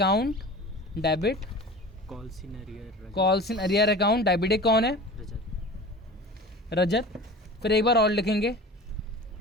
debit, calls in arrear account debit. एक कौन है? रजत। फिर एक बार और लिखेंगे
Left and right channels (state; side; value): normal; both; correlation 0.37